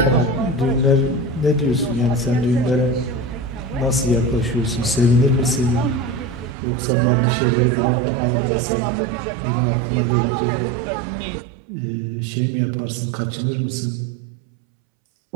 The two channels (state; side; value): drops out; left; at 6.6 s